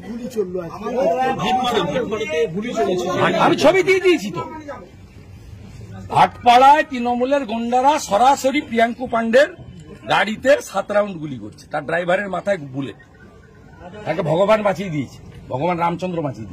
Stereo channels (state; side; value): identical; both; correlation 1.00